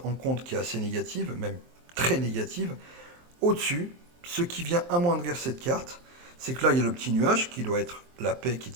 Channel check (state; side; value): late; left; 23 ms